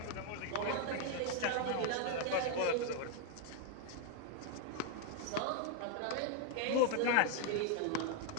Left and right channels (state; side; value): different; both; correlation 0.01